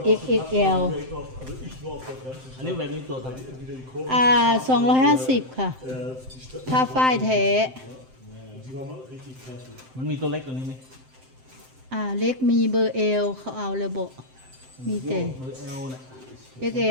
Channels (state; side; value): late; left; 7.7 ms